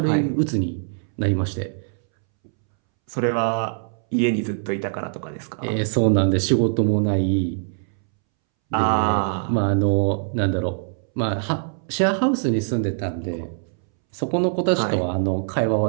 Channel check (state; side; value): silent; left; 64 dB below the other